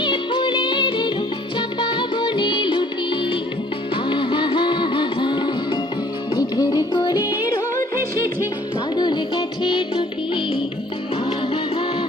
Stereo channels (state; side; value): normal; both; correlation 0.57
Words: ফুলের এলো, চাপা বনে লুটি, আহা হা হা হা। মেঘের কোলে রোদ এসেছে, বাদল গেছে টুটি, আহা হা